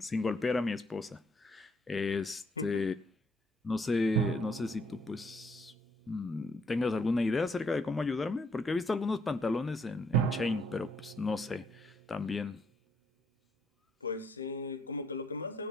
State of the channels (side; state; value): both; normal; correlation 0.70